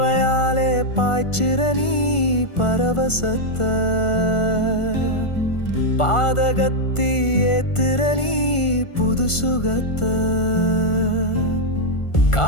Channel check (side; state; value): right; late; 1.4 ms